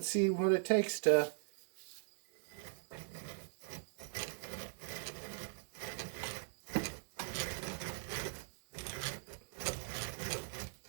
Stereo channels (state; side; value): silent; left; digital silence